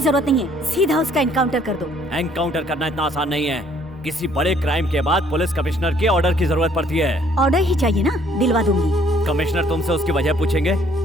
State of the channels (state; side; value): normal; both; correlation 0.62